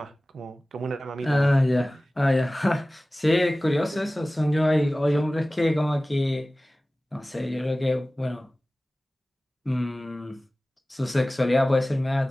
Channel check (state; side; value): normal; both; correlation 0.97